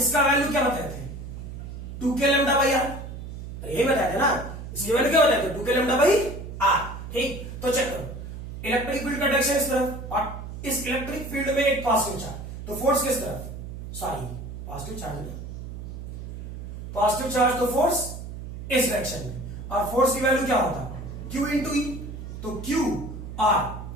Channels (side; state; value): right; noise; hum, 10 dB below the sound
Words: वैल्यू क्या बताए थे, 2k लैम्डा बाई r, यही बताया था ना, इसकी वैल्यू क्या बताए थे, 2k लैम्डा बाई r, ठीक। तो चेक करो, इलेक्ट्रिक फील्ड का डायरेक्शन इस तरफ, और इस इलेक्ट्रिक फील्ड में एक पॉजिटिव चार्ज, तो फोर्स किस तरफ, सॉरी पॉजिटिव चार्ज में, पॉजिटिव चार्ज तो फोर्स इस डायरेक्शन में, और फोर्स की वैल्यू क्या होता, Q इंटू ई, तो Q R